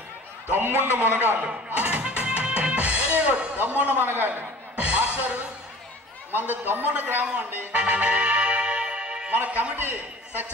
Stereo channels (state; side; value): normal; both; correlation 0.45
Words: దమ్ముండ మునగాళ్ళు. Very good. దమ్ముండ మునగాళ్ళు. మాస్టర్ మనది దమ్ముండ గ్రామం అండి. మన committee